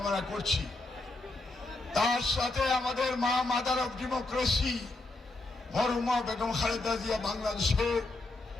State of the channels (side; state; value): right; quieter; 3.0 dB